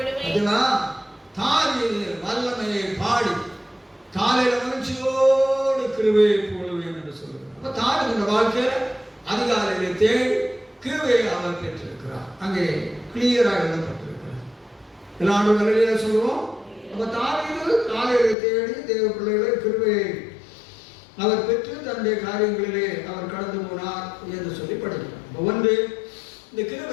16 வல்லமையை பாடி காலையில மகிழ்ச்சியோடு கிருபையை போடுவேன் என்று சொல்லுவேன். அப்ப தாவீது வாழ்க்கையில அதிகாலையிலே தேடி கிருபையை அவர் பெற்றிருக்கிறார். அங்கே கிளியராக எழுதப்பட்டிருக்கிறார். எல்லாரும் நல்ல சொல்லுவோம். அப்ப தாவீது காலையில தேடி தேவ பிள்ளைகளை கிருபையை அவர் பெற்று தன்னுடைய காரியங்களிலே அவர் கடந்து போனார் என்று சொல்லி படிக்கிறார். ஒன்று, இந்த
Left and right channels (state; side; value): drops out; right; at 18.4 s